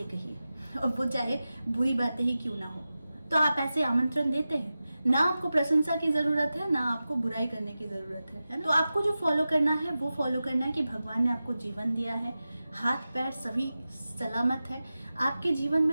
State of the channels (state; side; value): inverted; both; correlation -0.94